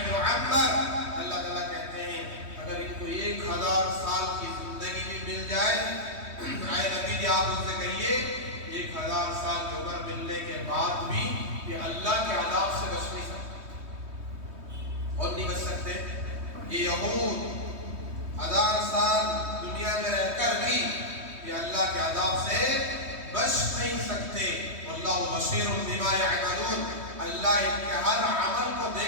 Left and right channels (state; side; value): late; left; 3.2 ms